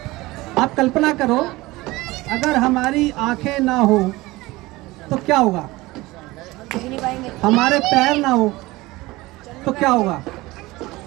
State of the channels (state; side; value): quieter; left; 20.2 dB